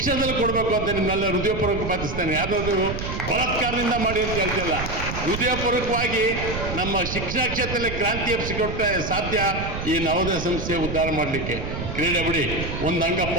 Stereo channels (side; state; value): right; noise; rumble, 6 dB below the sound